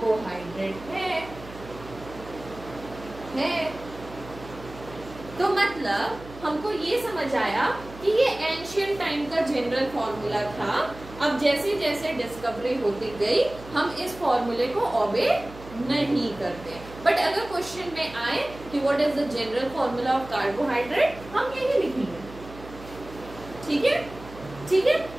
है। तो मतलब हमको ये समझ आया कि ये एंशियंट टाइम का जनरल फॉर्मूला था। अब जैसे जैसे डिस्कवरी होती गई हम इस फॉर्मूले को ओबे नहीं करते। बट अगर क्वेश्चन में आए कि what is the general formula of carbohydrate, हम यही लिखेंगे। ठीक है, ठीक है।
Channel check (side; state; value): right; noise; hum, 16 dB below the sound